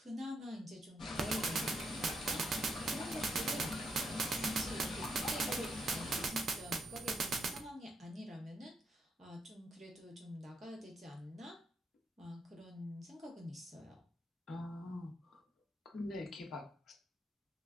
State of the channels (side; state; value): both; normal; correlation 0.78